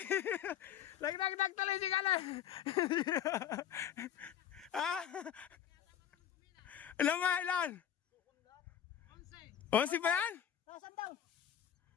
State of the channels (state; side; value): quieter; right; 9.9 dB